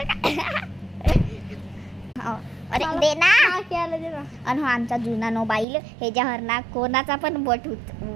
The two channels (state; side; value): drops out; left; at 5.7 s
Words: अरे दे ना. आणि हो आमचा जुना मोबाईल ह्याच्यावर ना कोणाचा पण बोट